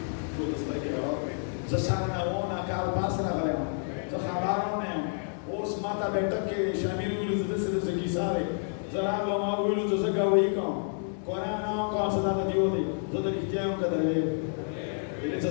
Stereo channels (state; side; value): silent; right; digital silence